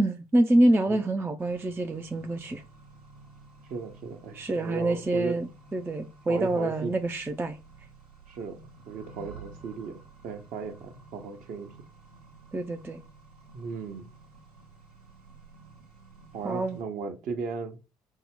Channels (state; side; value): normal; both; correlation 0.89